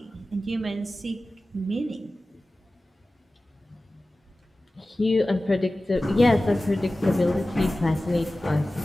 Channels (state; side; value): normal; both; correlation 0.96